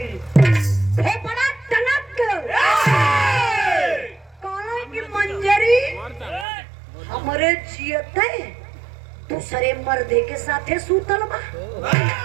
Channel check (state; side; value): drops out; left; at 6.5 s